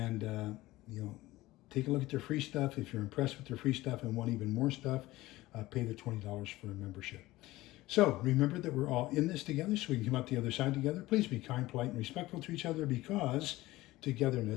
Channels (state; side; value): quieter; right; 18.1 dB